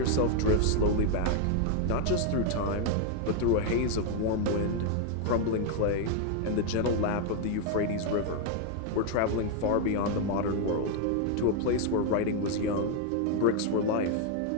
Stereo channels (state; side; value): different; both; correlation 0.01